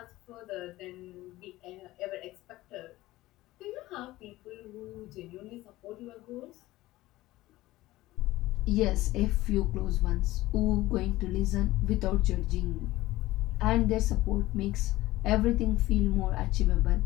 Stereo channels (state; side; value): quieter; right; 17.5 dB